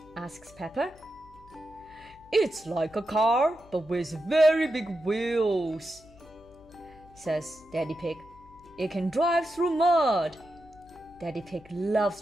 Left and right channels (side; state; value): left; noise; hum, 24 dB below the sound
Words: Asks Peppa. It's like a car, but with very big wheels, says Daddy Pig. It can drive through mud. Daddy Pig loves